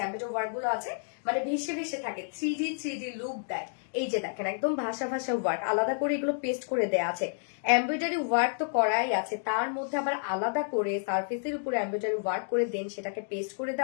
এমব্রয়ডারি ওয়ার্ক গুলো আছে, মানে ভেসে ভেসে থাকে, 3D লুক দেয়। এই যে দেখেন একদম ভাষা ভাষা ওয়ার্ক, আলাদা করে এগুলো পেস্ট করে দেয়া আছে। এমব্রয়ডারি ওয়ার্ক তো করাই আছে, তার মধ্যে আবার আলাদা করে সারফেসের উপরে এমব্রয়ডারি ওয়ার্ক করে দেন সেটাকে পেস্ট করে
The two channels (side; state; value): right; silent; digital silence